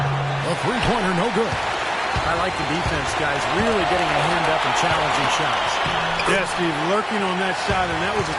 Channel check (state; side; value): identical; both; correlation 1.00